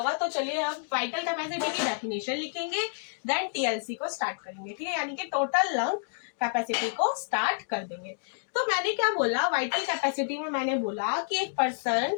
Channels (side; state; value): right; silent; digital silence